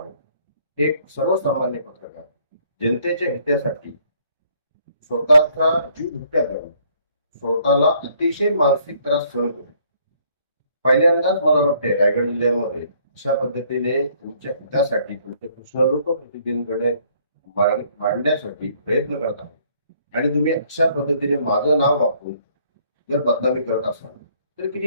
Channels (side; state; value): both; inverted; correlation -0.63